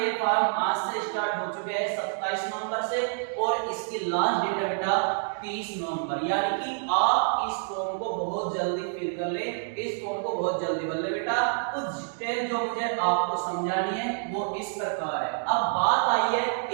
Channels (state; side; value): silent; left; digital silence